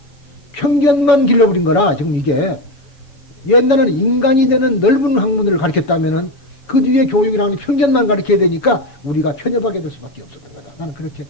편견만 길러버린 거라, 지금 이게. 옛날에는 인간이 되는 넓은 학문을 가르쳤다면은 그 뒤에 교육이라는 편견만 가르쳐야 되니까 우리가 편협하게 될 수밖에 없었던 거다. 나는 그렇게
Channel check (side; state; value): right; late; 7.1 ms